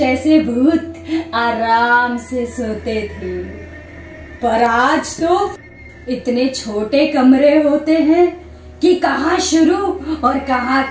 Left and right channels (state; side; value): identical; both; correlation 1.00